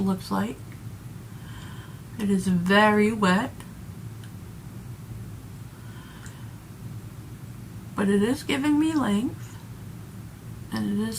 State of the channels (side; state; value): both; identical; correlation 1.00